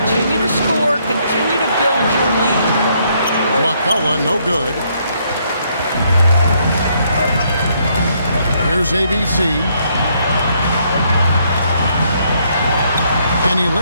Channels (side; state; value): both; inverted; correlation -0.71